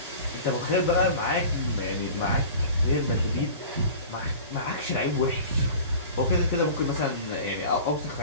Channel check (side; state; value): both; inverted; correlation -0.39